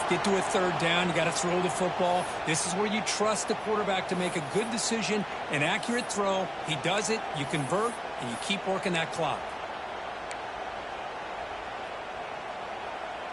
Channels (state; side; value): identical; both; correlation 1.00